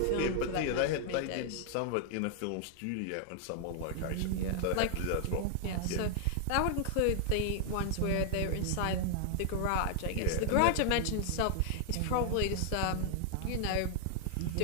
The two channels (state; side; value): different; both; correlation 0.00